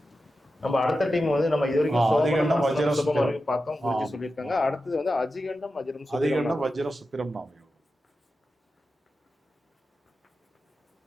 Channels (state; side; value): normal; both; correlation 0.91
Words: நம்ம அடுத்த டீம் வந்து நம்ம இது வரைக்கும் அதிகண்டம் வஜ்ரம் சுப்பிரம் வரைக்கும் பார்த்தோம். குருஜி சொல்லியிருக்காங்க. அடுத்தது வந்து அதிகண்டம் வஜ்ரம் சுப்பிரம். அதிகண்டம் வஜ்ரம் சுப்பிரம் நாமயோகம்.